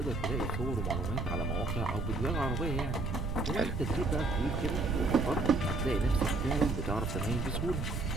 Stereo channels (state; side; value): noise; right; rumble, 2 dB below the sound